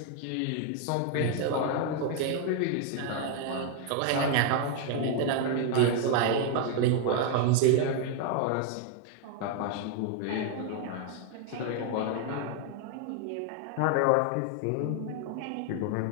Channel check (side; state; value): both; different; correlation 0.00